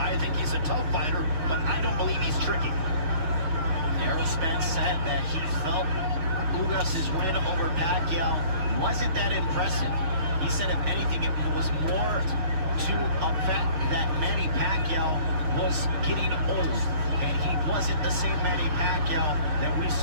think he's a tough fighter, but I don't believe he's tricky. Errol Spence said that he felt Ugas' win over Pacquiao wasn't that impressive. He said, if anything, it was more to a fact that Manny Pacquiao was getting old, and he wasn't the same Manny Pacquiao that we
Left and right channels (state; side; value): late; left; 6.5 ms